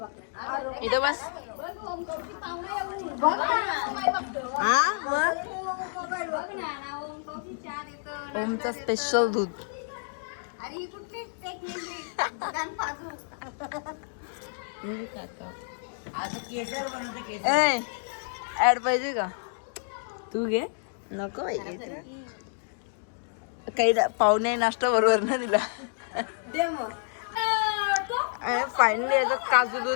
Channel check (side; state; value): right; silent; digital silence